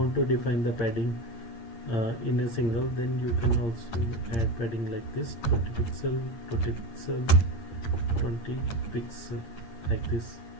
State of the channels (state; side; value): late; right; 8.7 ms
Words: to define the padding in a single, then you can also add padding like this: 20 pixel, 20 pixel, 20 pixel, like this,